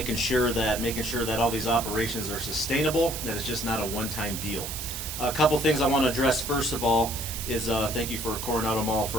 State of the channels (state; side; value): noise; right; hiss, 6 dB below the sound